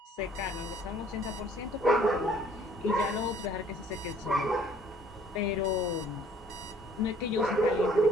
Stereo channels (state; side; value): normal; both; correlation 0.58